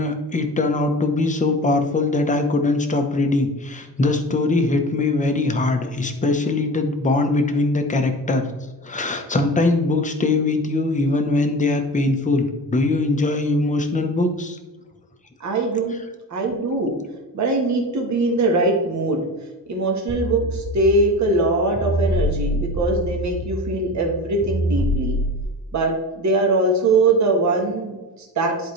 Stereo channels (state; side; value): normal; both; correlation 0.32